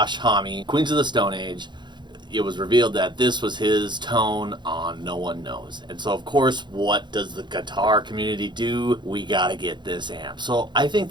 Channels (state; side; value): late; left; 0.22 ms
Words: Homme, Queens of the Stone Age, it was revealed that this was his tone on No One Knows. And so of course, what does the guitar community do? We gotta get this amp. So I think